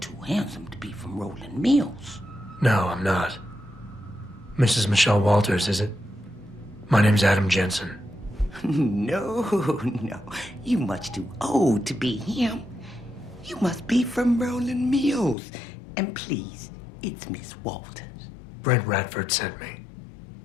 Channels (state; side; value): drops out; right; at 15.4 s